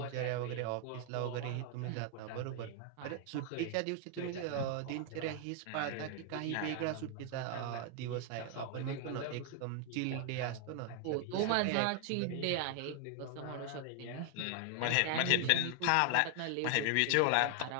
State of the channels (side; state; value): both; different; correlation 0.00